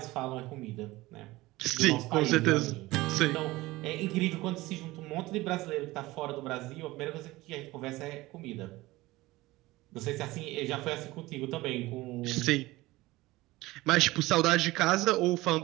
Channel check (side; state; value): left; quieter; 19.3 dB